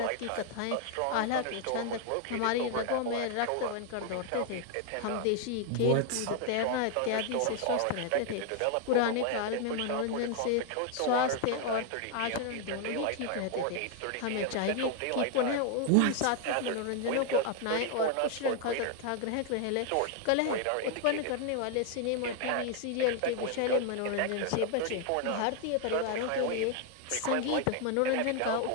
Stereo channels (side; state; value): both; different; correlation 0.00